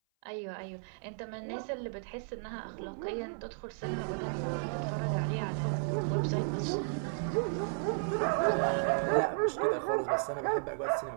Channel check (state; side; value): silent; left; 55 dB below the other